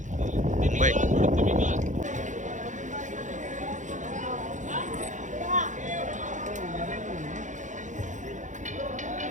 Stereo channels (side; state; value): left; late; 0.36 ms